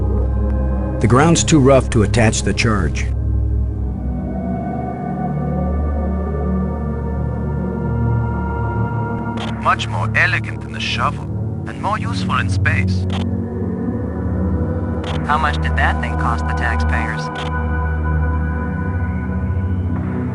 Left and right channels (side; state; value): both; identical; correlation 1.00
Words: The ground's too rough to attach the charge. Much more elegant than the shovel, and more useful in space. How much did that thing cost the taxpayers?